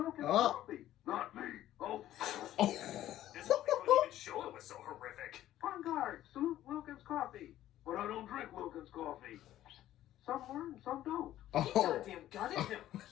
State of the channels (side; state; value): right; quieter; 13.2 dB